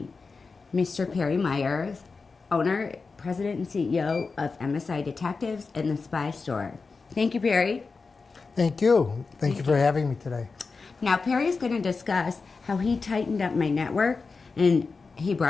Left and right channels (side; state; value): right; quieter; 4.4 dB